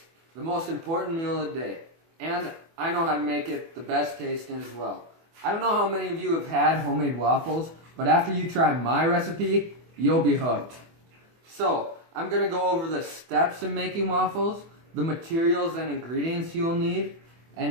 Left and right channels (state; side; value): late; left; 24 ms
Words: the most important meal of the day. And I know how to make it the best tasting as well. I don't know how many of you have had homemade waffles, but after you try my recipe, you'll be hooked. So, I'm going to go over the steps in making waffles, the materials and ingredients you'll need,